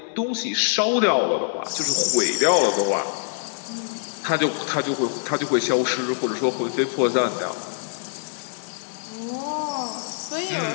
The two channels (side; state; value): right; silent; 63 dB below the other